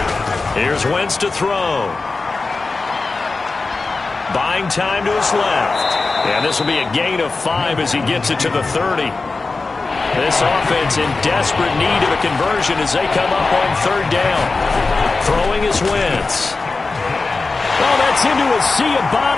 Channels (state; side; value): quieter; right; 3.8 dB